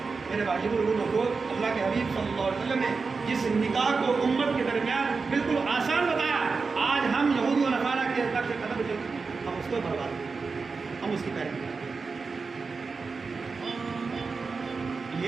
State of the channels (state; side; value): quieter; left; 4.6 dB